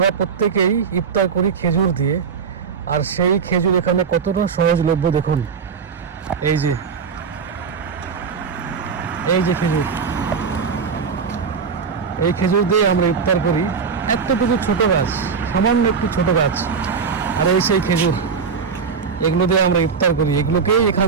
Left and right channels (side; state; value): left; quieter; 5.9 dB